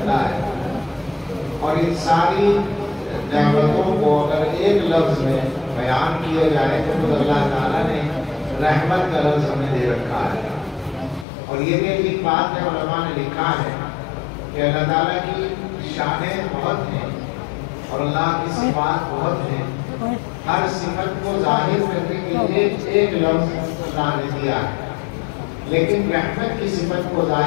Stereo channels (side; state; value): right; drops out; at 11.2 s